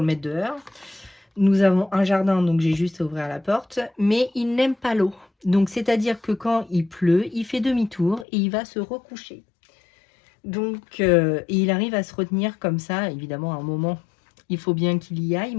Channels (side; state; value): right; drops out; at 8.2 s